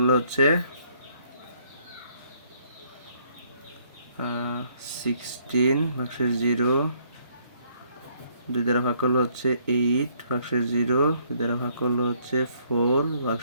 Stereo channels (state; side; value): inverted; both; correlation -0.67